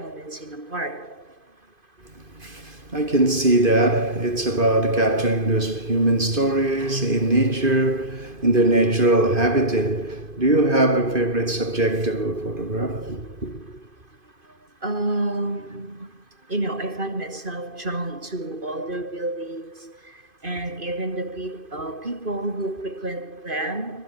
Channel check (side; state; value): left; late; 2.5 ms